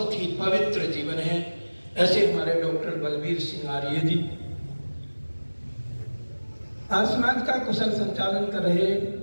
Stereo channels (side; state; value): both; inverted; correlation -1.00